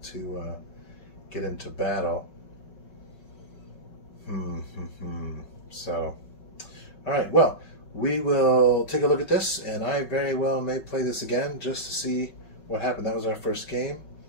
to get into battle. So, all right, well, we will take a look at this, and I very well may play this again just to see what happened. That was our first game,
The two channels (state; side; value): late; right; 5.4 ms